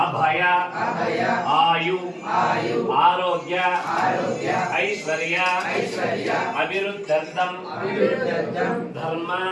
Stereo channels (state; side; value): identical; both; correlation 1.00